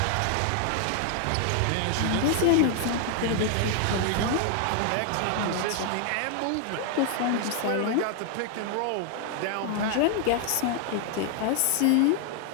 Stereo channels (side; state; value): both; different; correlation 0.00